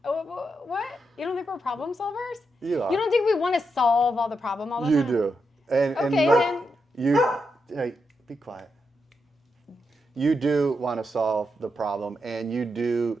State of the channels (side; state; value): both; normal; correlation 0.84